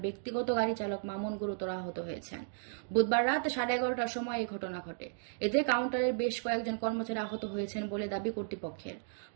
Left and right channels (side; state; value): left; silent; digital silence